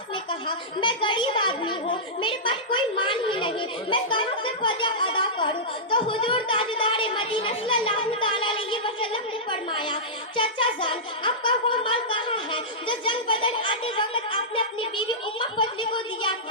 ने कहा, मैं गरीब आदमी हूँ, मेरे पास कोई माल ही नहीं, मैं कहाँ से फदिया अदा करूँ? तो हुजूर ताजदार मदीना सल्लल्लाहु तआला अलैहि वसल्लम ने फरमाया, चाचा जान, आपका वो माल कहाँ है जो जंग बदर आते वक्त आपने अपनी बीवी उम्मा फजली को दिया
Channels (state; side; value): normal; both; correlation -0.14